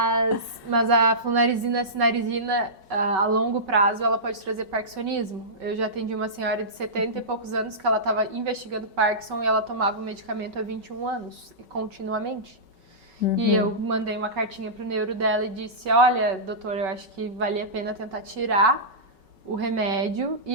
a flunarizina, a cinarizina, a longo prazo, ela pode trazer parkinsonismo. Eu já atendi uma senhora de 70 e poucos anos que ela estava investigando Parkinson e ela tomava o medicamento há 21 anos, continuamente. E eu mandei uma cartinha pro neuro dela e disse, olha, doutor, eu acho que valia a pena tentar tirar o remédio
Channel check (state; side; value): late; left; 5.3 ms